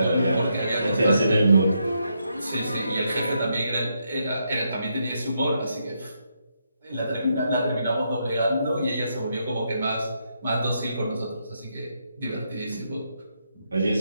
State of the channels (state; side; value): inverted; both; correlation -0.79